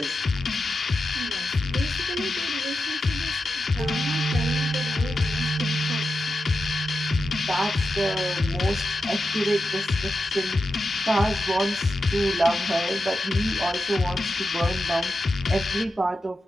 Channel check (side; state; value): both; normal; correlation 0.89